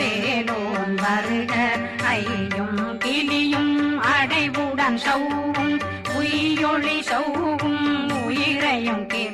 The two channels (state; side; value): identical; both; correlation 1.00